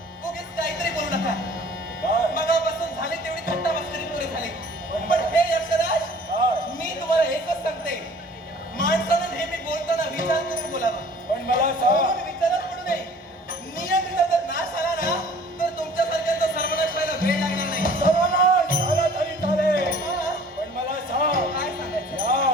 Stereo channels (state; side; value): normal; both; correlation 0.50